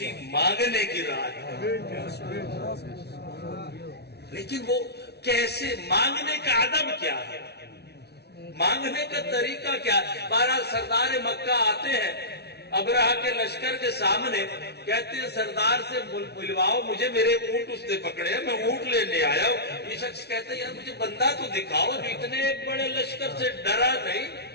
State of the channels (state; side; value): late; right; 0.48 ms